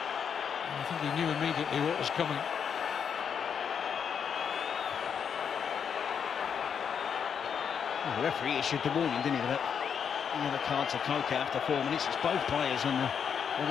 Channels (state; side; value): quieter; right; 7.3 dB